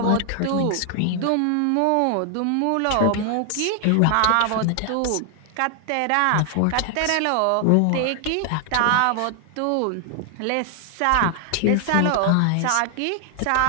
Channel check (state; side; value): different; both; correlation 0.00